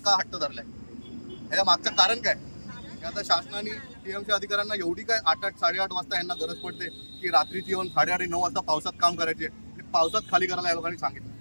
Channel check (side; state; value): both; inverted; correlation -1.00